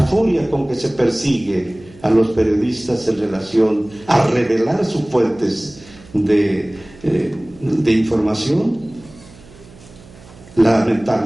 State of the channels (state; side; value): noise; right; hum, 23 dB below the sound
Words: furia con que se persigue a los periodistas en relación a revelar sus fuentes de información.